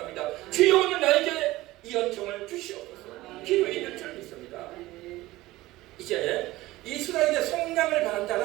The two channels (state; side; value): quieter; left; 18.1 dB